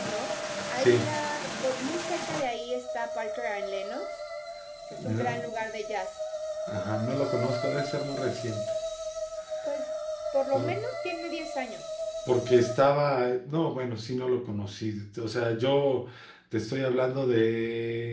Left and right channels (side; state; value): both; identical; correlation 1.00